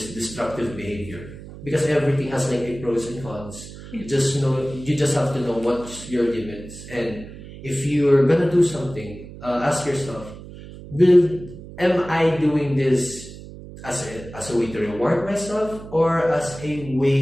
destructive behavior. Because everything has like a pros and cons. You just have to know what's your limits, and if you're gonna do something, ask yourself, am I doing this as a way to reward myself or as a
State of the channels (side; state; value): right; noise; hum, 15 dB below the sound